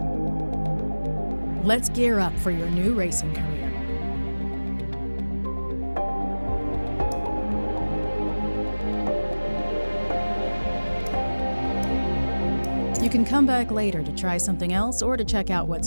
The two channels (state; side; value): inverted; both; correlation -1.00